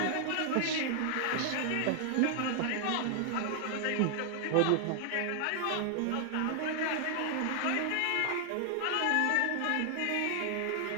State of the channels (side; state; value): both; different; correlation 0.00